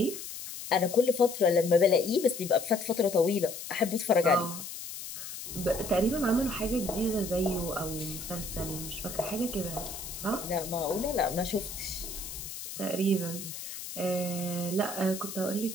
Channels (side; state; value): left; noise; hiss, 9 dB below the sound